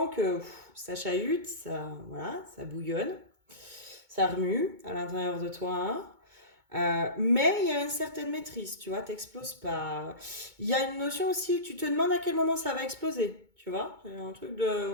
que ça chahute, voilà, ça bouillonne, ça remue à l'intérieur de toi. Mais il y a une certaine maîtrise, tu vois, t'exploses pas. Il y a une notion aussi, tu te demandes à quel moment ça va exploser, tu vois. C'est un truc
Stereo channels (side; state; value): left; late; 2.2 ms